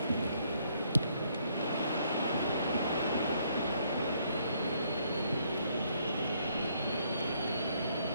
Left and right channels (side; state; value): both; inverted; correlation -0.69